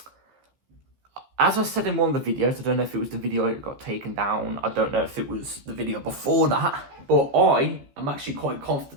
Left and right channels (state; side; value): late; left; 15 ms